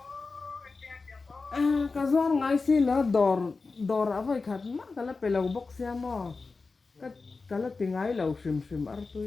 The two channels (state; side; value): quieter; right; 4.1 dB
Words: cái gió ngay xí là đor ở với khát mà cái là pelau box xe mà cái là tiếng ngay lâu sim sim ở